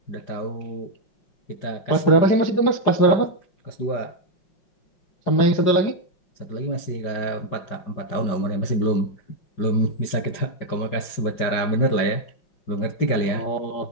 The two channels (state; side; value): late; right; 5.0 ms